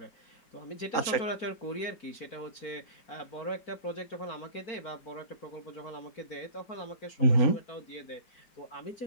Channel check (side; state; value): right; late; 3.9 ms